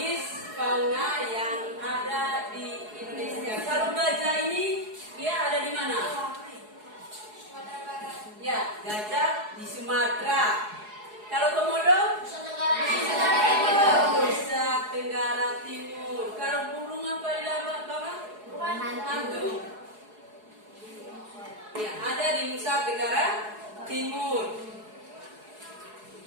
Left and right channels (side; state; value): left; late; 4.7 ms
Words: fauna yang ada di Indonesia. Kalau gajah ini dia ada di mana? Ya, gajah di Sumatera. Kalau komodo? Nusa Tenggara Timur. Kalau burung apa di bawah? Hantu. Ya, ada di Nusa Tenggara Timur.